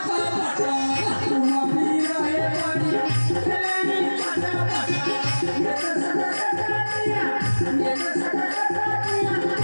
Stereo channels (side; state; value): both; inverted; correlation -1.00